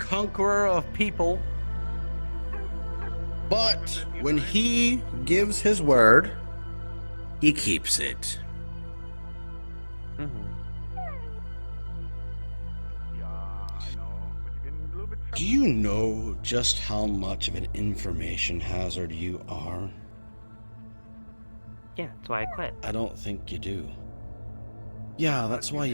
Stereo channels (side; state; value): both; inverted; correlation -1.00